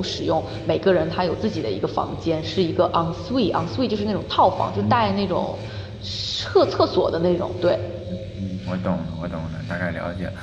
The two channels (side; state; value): both; identical; correlation 1.00